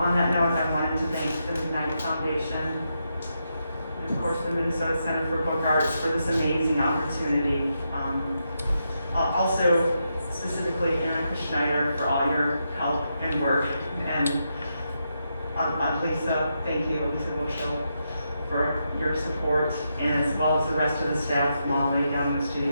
that note, I wanted to thank the McKnight Foundation and, of course, the Minnesota Center for Book Arts for this amazing opportunity. Also, specifically, Erica Schneider for all your help and work. And Lisa, thank you, Lisa Wilshel, for your support, and as well as the rest of the staff, Molly down in the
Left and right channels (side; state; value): both; inverted; correlation -0.83